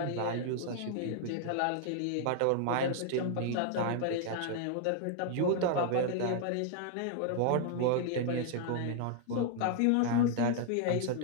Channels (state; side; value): different; both; correlation 0.00